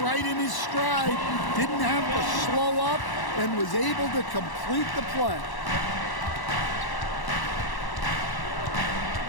in his stride. Didn't have to slow up and was able to complete the play.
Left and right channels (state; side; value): late; right; 1.0 ms